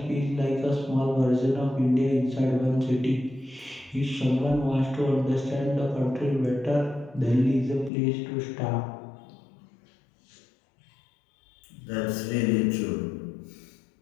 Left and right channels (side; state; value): right; drops out; at 7.9 s